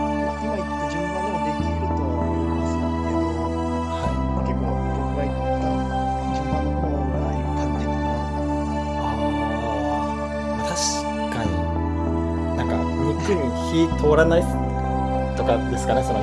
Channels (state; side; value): identical; both; correlation 1.00